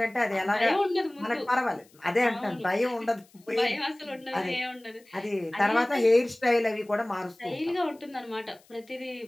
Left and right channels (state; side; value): noise; left; hiss, 30 dB below the sound